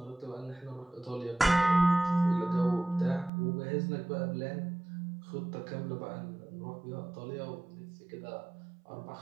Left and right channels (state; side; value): drops out; left; at 3.3 s